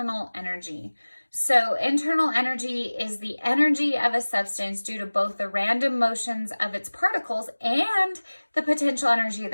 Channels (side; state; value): both; inverted; correlation -1.00